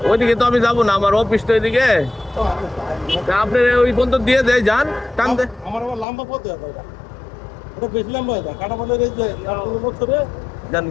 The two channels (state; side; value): drops out; right; at 6.1 s